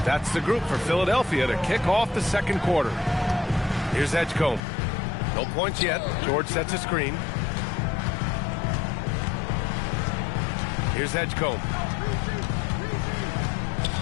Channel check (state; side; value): drops out; right; at 4.6 s